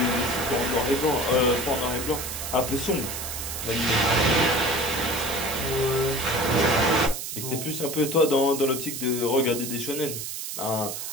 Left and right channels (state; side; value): noise; right; hiss, 6 dB below the sound